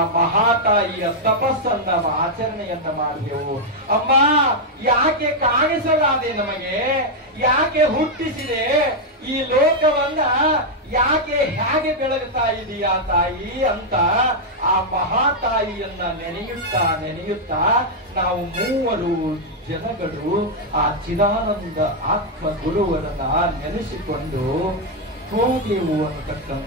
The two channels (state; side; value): normal; both; correlation -0.01